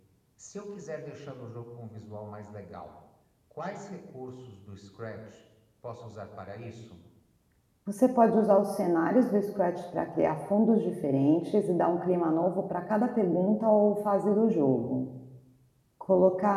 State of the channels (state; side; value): identical; both; correlation 1.00